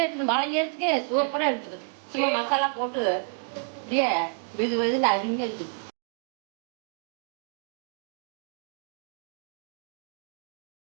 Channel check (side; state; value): left; silent; 58 dB below the other